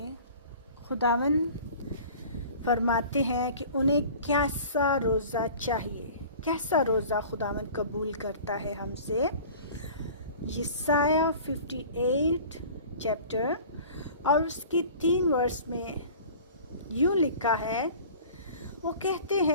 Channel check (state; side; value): inverted; both; correlation -0.43